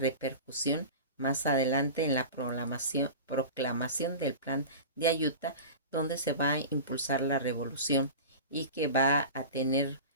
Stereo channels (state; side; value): inverted; both; correlation -0.31